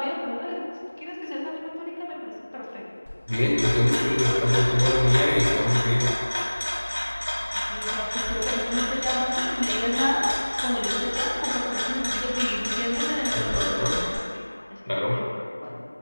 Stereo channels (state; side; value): inverted; both; correlation -1.00